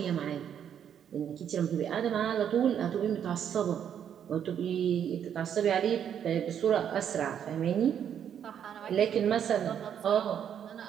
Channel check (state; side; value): quieter; left; 8.9 dB